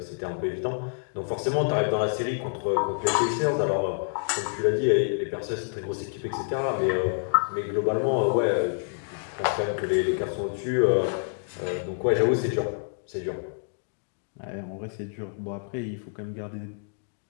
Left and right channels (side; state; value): right; silent; digital silence